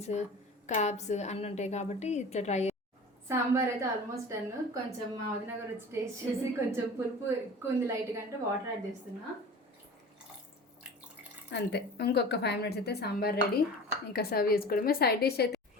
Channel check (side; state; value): both; normal; correlation 0.38